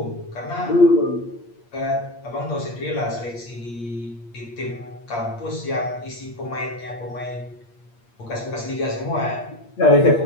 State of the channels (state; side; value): late; right; 8.5 ms